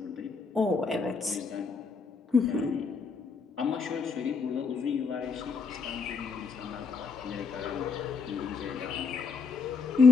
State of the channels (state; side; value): quieter; right; 4.9 dB